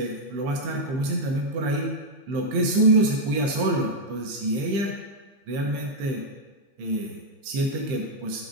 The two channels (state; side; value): late; left; 15 ms